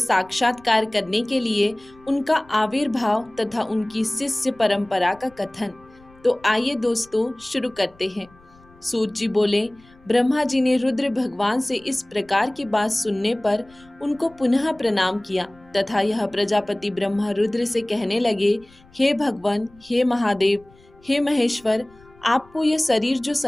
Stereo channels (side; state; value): left; noise; rumble, 27 dB below the sound